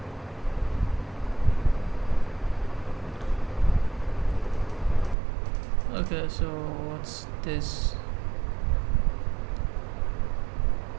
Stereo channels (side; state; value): left; drops out; at 5.2 s